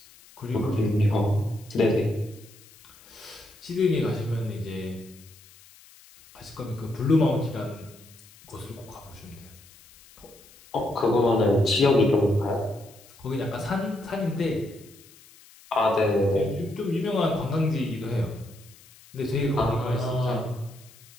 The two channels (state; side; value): noise; left; hiss, 24 dB below the sound